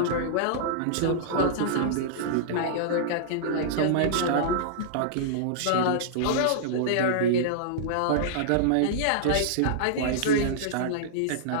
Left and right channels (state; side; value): different; both; correlation -0.02